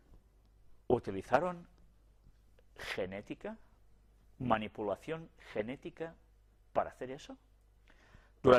Utilizaron genética, manipulación genética para hacer eso.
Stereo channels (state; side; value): identical; both; correlation 1.00